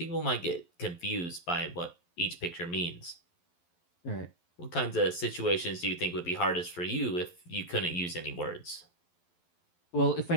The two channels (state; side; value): late; right; 11 ms